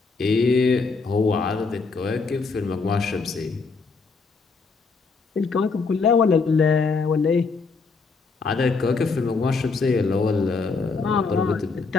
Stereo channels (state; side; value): quieter; right; 4.5 dB